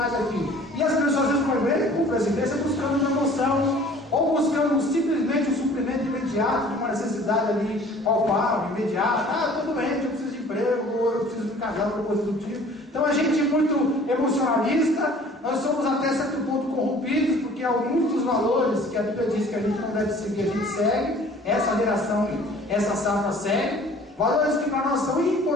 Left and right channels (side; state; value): both; normal; correlation 0.50